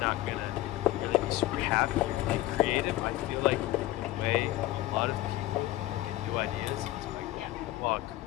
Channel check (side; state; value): right; quieter; 16.1 dB